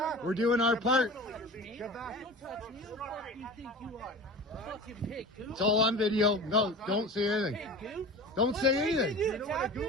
We're doing our part. Get back! Don't touch me. Who the fuck do you think you are? Fucking pig, goof. It's all on video. No, don't say anything. Pig, goof. Don't say anything. You attack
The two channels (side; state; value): both; normal; correlation 0.35